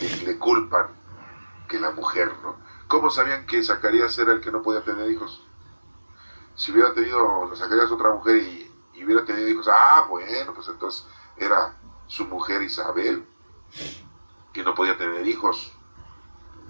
culpan que la mujer, ¿no? ¿Cómo sabían que Zacarías era el que no podía tener hijos? Si hubiera tenido Zacarías otra mujer y hubiera tenido hijos, bueno, pues entonces era su mujer Isabel, que no podía tener hijos.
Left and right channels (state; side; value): inverted; both; correlation -1.00